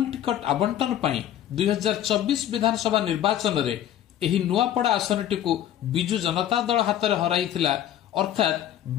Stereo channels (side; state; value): right; quieter; 11.3 dB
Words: टिकट आवंटन पई 2024 विधानसभा निर्वाचन रे एही नुआपड़ा आसनटीकु बिजु जनता दल हातरे हराइथिला, अर्थात